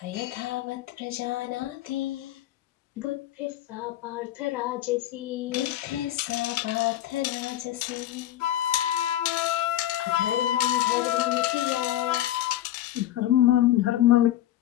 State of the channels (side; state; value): right; quieter; 13.4 dB